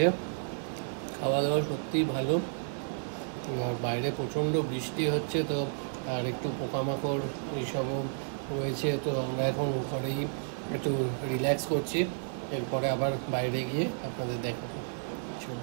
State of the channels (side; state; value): left; silent; digital silence